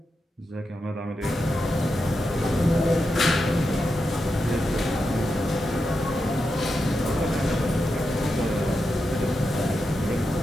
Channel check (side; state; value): both; normal; correlation 0.88